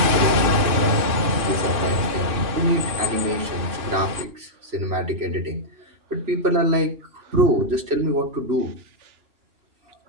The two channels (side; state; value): left; late; 2.6 ms